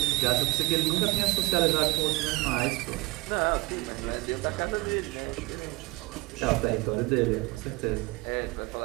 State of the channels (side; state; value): left; quieter; 22.8 dB